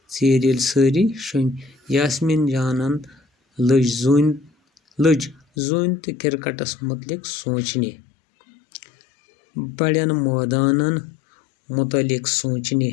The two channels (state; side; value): drops out; right; at 5.4 s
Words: شۄنٛگۍ یاسمین جانن لٔج زوٗنہِ تہٕ کِرکٹس مُتعلق سونٛچنہِ بڑٮ۪ن مٲدانن مُتعلق سونٛچنہِ